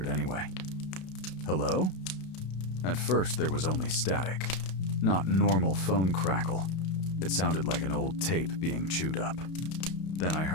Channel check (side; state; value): right; late; 32 ms